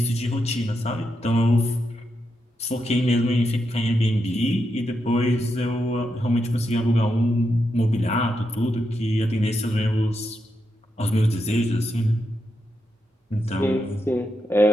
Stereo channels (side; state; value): both; normal; correlation 0.84